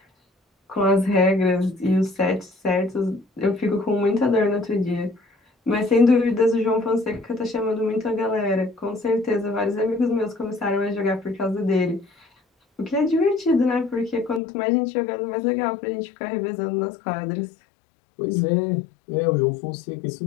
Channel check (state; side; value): drops out; right; at 14.4 s